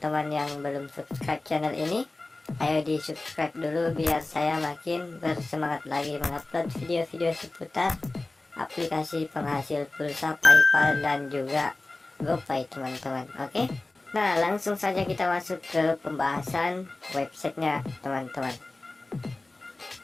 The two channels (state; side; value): quieter; right; 3.1 dB